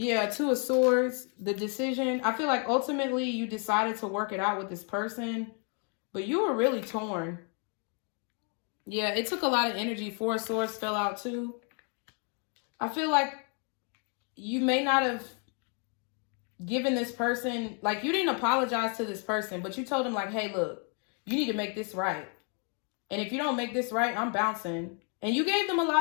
Two of Swords, the decision. I feel like ultimately you decided to work it out with this person, but you were really torn. Yeah, it took a lot of energy. Four of Swords fell out too. I feel like you may not have given this person, like, you didn't apologize to this person, but you told him, like, hey, look, you need to make this right. And if you don't make this right, I'm bouncing. And you gave them a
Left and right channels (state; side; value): quieter; right; 39.8 dB